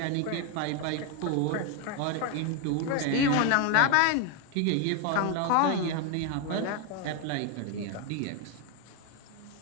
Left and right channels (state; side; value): different; both; correlation 0.01